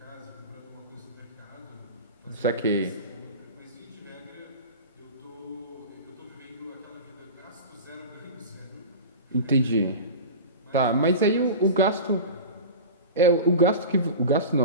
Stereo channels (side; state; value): both; inverted; correlation -0.31